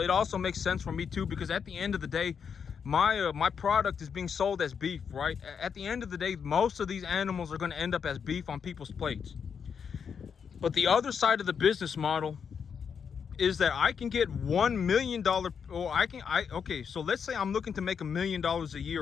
also makes sense for me too, because at the end of the day, my product is being sold as beef, right? At the end of the day, most of these animals are going to end up as beef on people's plates. But the other side of the business model is that I can get $1 million, okay, so let's say I'm looking to make $1 million a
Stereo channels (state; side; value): quieter; right; 6.8 dB